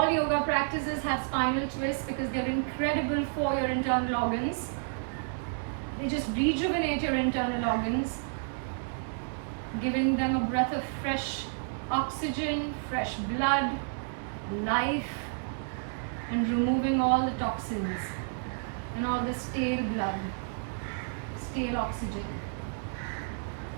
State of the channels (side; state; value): left; silent; 57 dB below the other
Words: yoga practices have spinal twists because they're incredible for your internal organs. They just rejuvenate your internal organs, giving them a breath of fresh oxygen, fresh blood, life, and removing all the toxins and all the stale blood, stale oxygen.